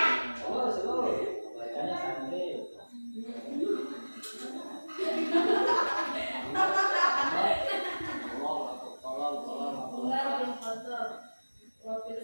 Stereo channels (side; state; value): both; inverted; correlation -1.00